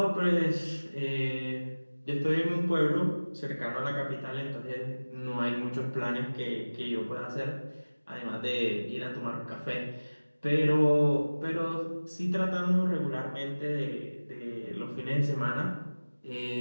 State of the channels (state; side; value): inverted; both; correlation -1.00